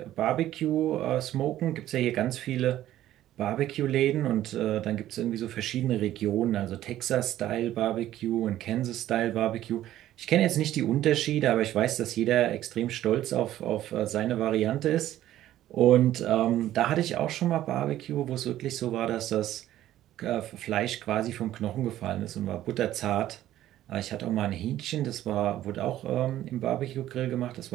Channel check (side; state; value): left; quieter; 13.3 dB